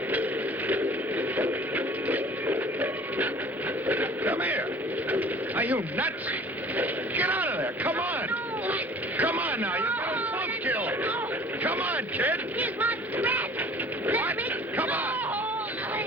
Come here. Are you nuts? Get out of there. Come on. Come on now. You're getting both killed. Come on, kid. Here's my threat. What? Come on.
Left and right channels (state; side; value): normal; both; correlation 0.48